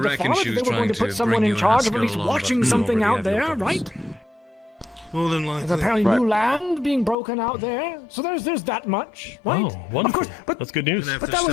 reckon father, she that was they were going to trying put to someone bring in you and charge of at Haskell least along, but watching we something already out have there, your right? More than There's likely. apparently new land being broken out there, so there's that much, right? Oh, wonderful. Of course, but That's good news. but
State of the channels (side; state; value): right; drops out; at 7.2 s